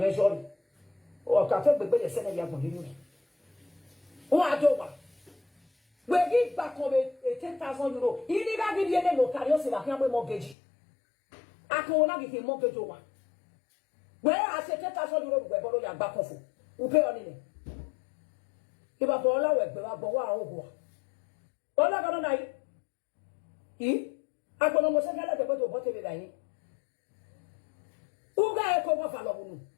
it. Or I can take the send a year for you. What do I? We give back on 10,000 euro. You need to give you a local, so that you have a mortgage. I can not give you a mortgage over. Where I say 10,000 euro, we borrow your back off. We pay on it. If I borrow, we borrow. All I got on I. I can almost get the bottle of water. Who got a cover for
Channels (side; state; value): right; drops out; at 10.6 s